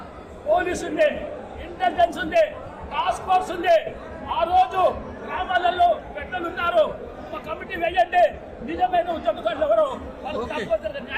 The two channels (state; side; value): identical; both; correlation 1.00